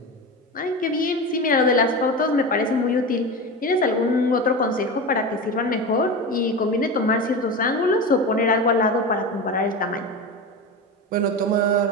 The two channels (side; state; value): both; normal; correlation 0.24